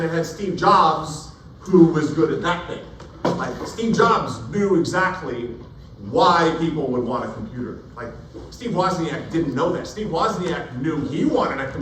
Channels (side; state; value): both; identical; correlation 1.00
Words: it had Steve Jobs, who was good at that thing. Like, Steve Jobs knew exactly why people would want a computer. Like, Steve Wozniak didn't know that. Steve Wozniak knew he wanted a